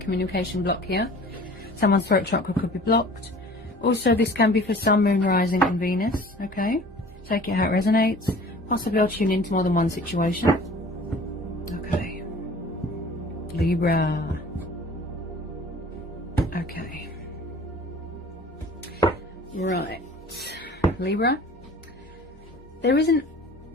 block here. Someone's throat chakra could be blocked. Also this can be for Sun, Moon, Rising and Venus. Okay, take it how it resonates. Possibly I'll tune into more than one situation. Okay, Libra. Okay, right, Libra, there isn't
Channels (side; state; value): both; normal; correlation 0.46